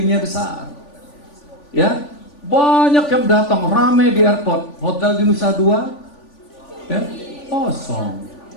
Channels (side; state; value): right; late; 3.4 ms